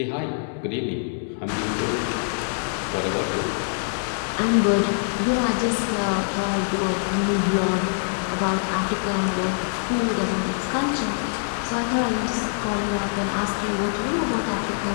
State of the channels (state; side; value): silent; right; digital silence